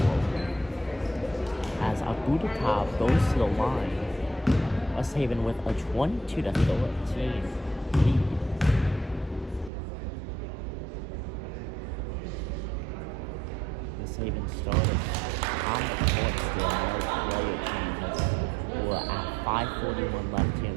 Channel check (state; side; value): drops out; left; at 9.7 s